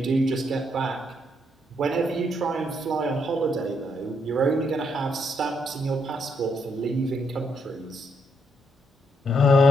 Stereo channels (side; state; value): both; normal; correlation 0.76